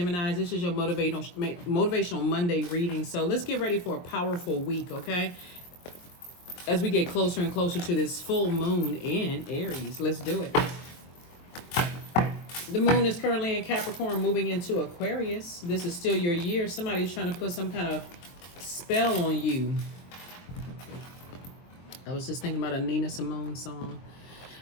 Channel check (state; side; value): late; right; 23 ms